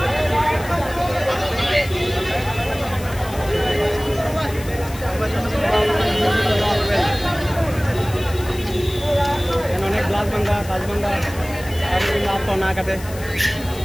অনেক গ্লাস ভাঙ্গা কাজ ভাঙ্গা আর তো না কাটে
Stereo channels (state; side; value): noise; left; hiss, 16 dB below the sound